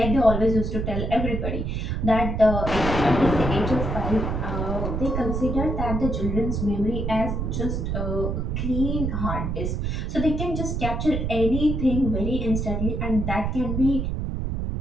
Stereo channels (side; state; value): right; noise; rumble, 1 dB below the sound